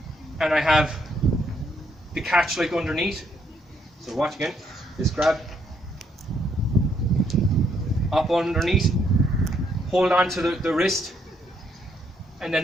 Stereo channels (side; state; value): both; normal; correlation 0.72